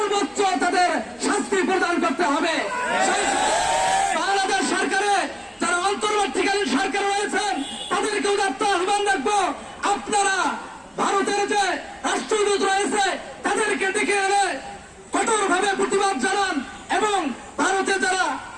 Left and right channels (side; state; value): both; identical; correlation 1.00